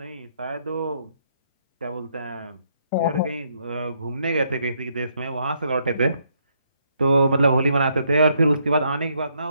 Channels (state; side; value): inverted; both; correlation -0.73